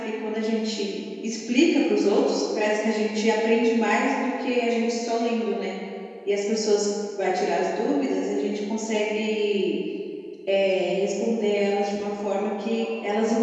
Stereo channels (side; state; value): both; identical; correlation 1.00